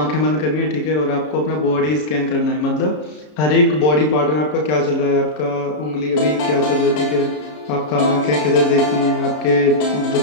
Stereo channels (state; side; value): late; right; 33 ms